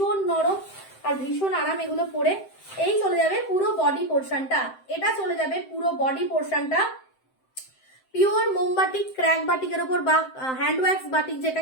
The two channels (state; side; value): late; right; 7.7 ms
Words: নরম আর ভীষণ আরাম এগুলো পরে। এই চলে যাবে পুরো বডি পোর্শনটা, এটা চলে যাবে পুরো বডি পোর্শনটা পিওর মোমবাটিক ক্র্যাক বাটিকের উপর বা হ্যান্ড ওয়াক্স বাটিক